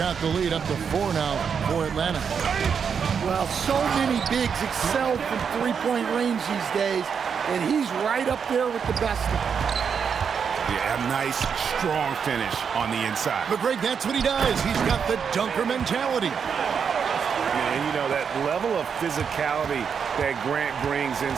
the lead up to 4 now for Atlanta. Well, so many bigs excel from three-point range these days, and he's right up there with the best of them. Yeah, a nice, strong finish on the inside. But Greg, that's what he does. He's got the dunker mentality. And, you know, that level of physicality that Grant brings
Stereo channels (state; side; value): quieter; left; 6.7 dB